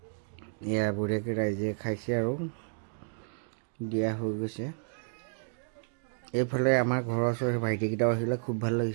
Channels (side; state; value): left; silent; 57 dB below the other